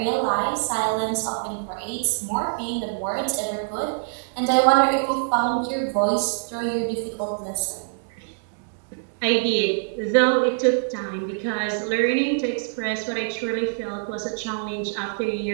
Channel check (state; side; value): silent; left; digital silence